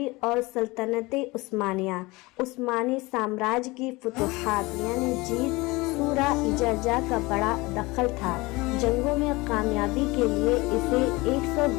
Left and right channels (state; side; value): quieter; right; 22.8 dB